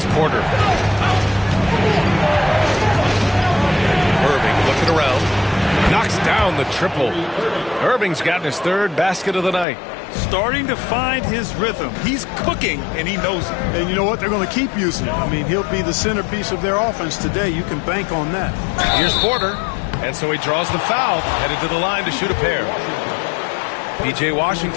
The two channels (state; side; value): drops out; right; at 9.7 s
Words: Porter. Irving looking around. Knocks down the triple. Irving's gotten his 3rd basket of the night. Starting to find his rhythm. He's cooking, and he knows it. And you know what? They're going to keep using him. I mean, he'll be the centerpiece of their offense today. You can bank on that. Here's Porter. And so he draws the foul, headed to the line to shoot a pair. P.J.